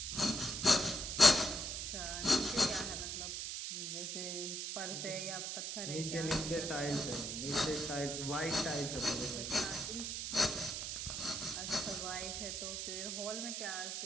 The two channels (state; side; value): noise; right; hiss, 4 dB below the sound